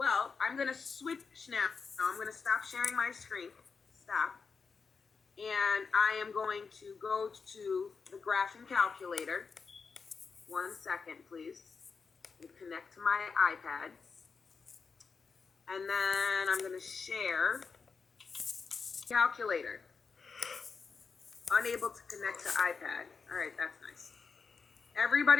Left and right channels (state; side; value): quieter; right; 5.2 dB